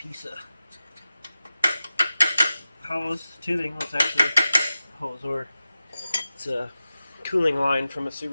of hose, tubing. It's actually a hose, or it's a cooling line from a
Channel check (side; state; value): both; inverted; correlation -0.94